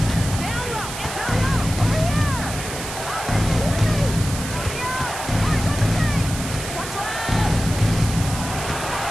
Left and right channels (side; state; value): right; noise; hiss, 8 dB below the sound